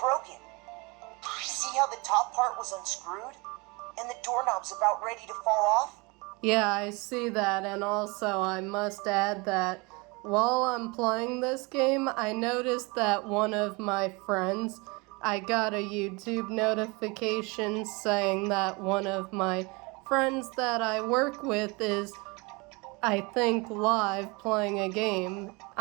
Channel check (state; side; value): quieter; left; 27.3 dB